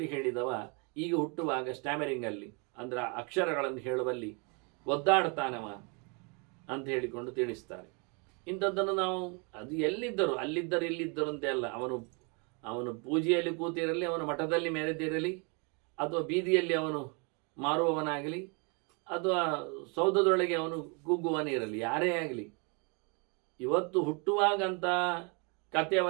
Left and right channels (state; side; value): quieter; left; 33.4 dB